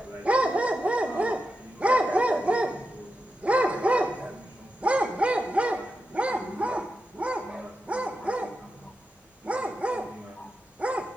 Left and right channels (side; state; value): both; normal; correlation 0.89